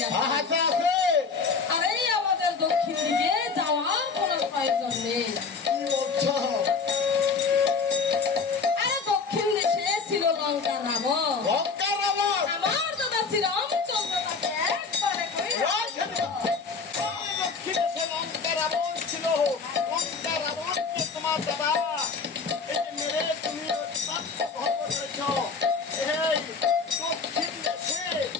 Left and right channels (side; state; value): right; quieter; 4.9 dB